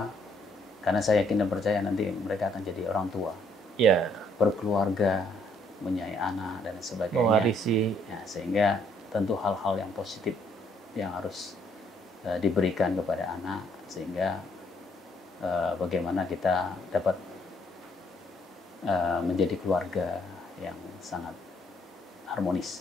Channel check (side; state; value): both; normal; correlation 0.68